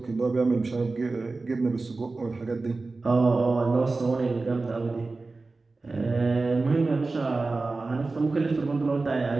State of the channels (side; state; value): left; quieter; 3.6 dB